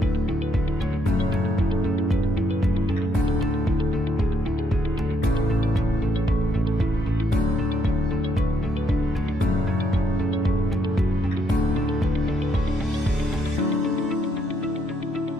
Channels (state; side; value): normal; both; correlation 0.73